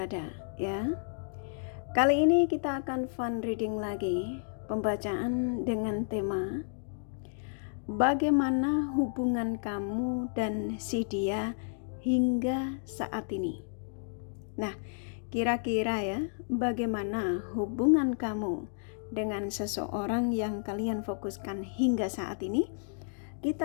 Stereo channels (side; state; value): right; silent; digital silence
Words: ya. Kali ini kita akan fun reading lagi, pembacaan dengan tema bagaimana hubungan kamu dan si dia hingga saat ini. Nah, kira-kira ya, bagaimana hubungan kamu dengan seseorang yang kalian fokuskan hingga saat ini?